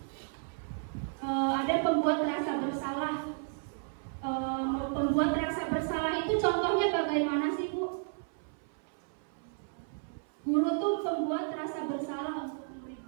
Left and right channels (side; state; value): left; silent; 56 dB below the other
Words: ada pembuat rasa bersalah. Pembuat rasa bersalah itu contohnya bagaimana sih Bu? Guru tuh pembuat rasa bersalah untuk